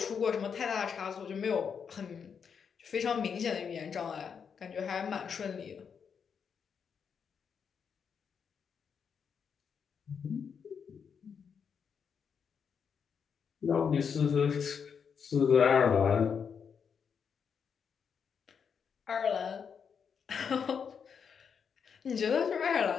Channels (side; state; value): right; quieter; 6.7 dB